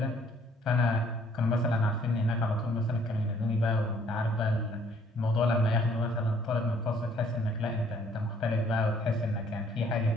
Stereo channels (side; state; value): both; normal; correlation 0.61